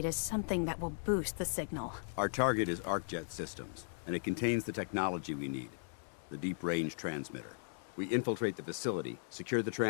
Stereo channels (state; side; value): silent; right; digital silence